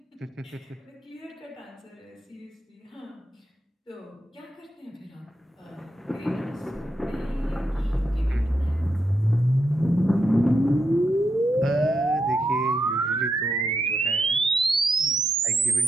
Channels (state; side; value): normal; both; correlation 0.83